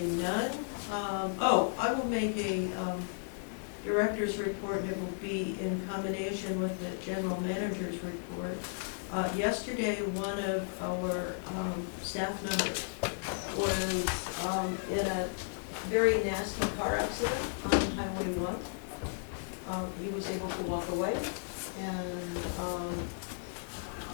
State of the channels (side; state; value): right; silent; 55 dB below the other